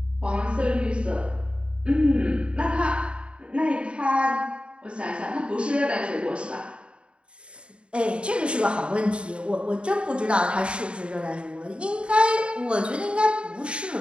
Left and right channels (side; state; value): left; late; 0.056 ms